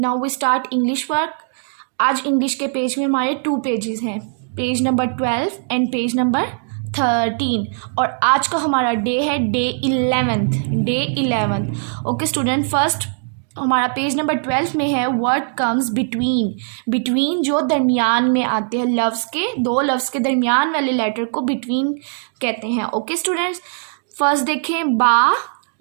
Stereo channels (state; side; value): silent; left; digital silence